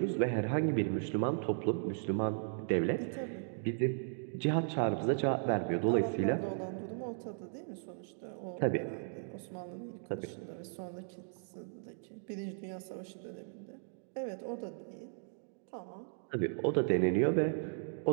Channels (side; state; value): left; silent; digital silence